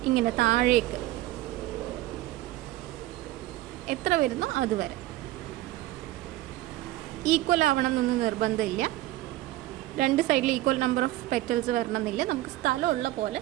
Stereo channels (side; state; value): left; quieter; 16.1 dB